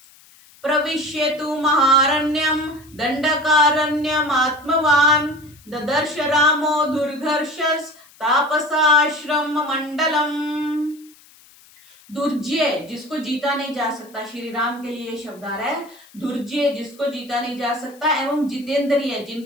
प्रविश्यतु महारण्यम दंडकारण्यम आत्मवान ददर्श रामो दुर्घर्षस तापसाश्रम मंडलम। दुर्जय जिसको जीता नहीं जा सकता, श्री राम के लिए शब्द आ रहा है। दुर्जय जिसको जीता नहीं जा सकता एवं जितेंद्रिय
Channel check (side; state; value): left; noise; hiss, 26 dB below the sound